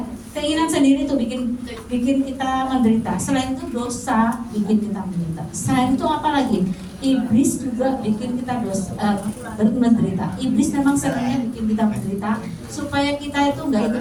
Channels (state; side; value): identical; both; correlation 1.00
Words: Keinginan sendiri itu bikin kita menderita. Selain itu dosa bikin kita menderita. Selain itu apa lagi? Iblis juga bikin kita menderita. Iblis memang sebenarnya bikin kita menderita supaya kita itu nggak ikut